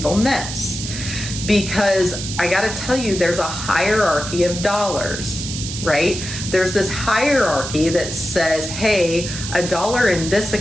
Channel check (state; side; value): noise; right; hiss, 7 dB below the sound